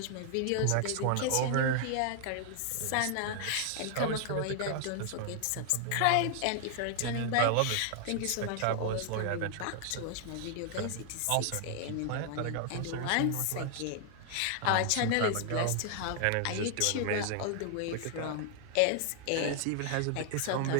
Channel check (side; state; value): both; different; correlation 0.00